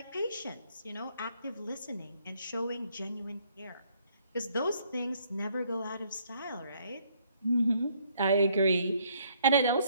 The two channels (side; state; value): both; inverted; correlation -0.67